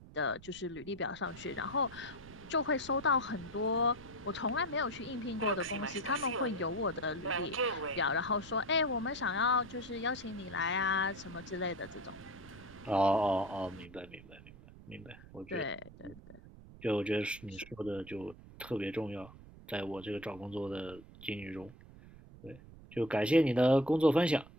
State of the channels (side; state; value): right; noise; rumble, 19 dB below the sound